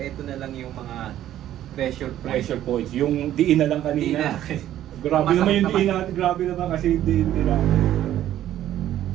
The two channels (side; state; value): left; quieter; 12.3 dB